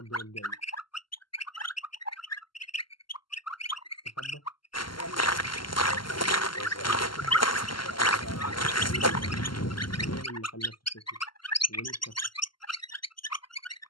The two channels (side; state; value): right; late; 0.72 ms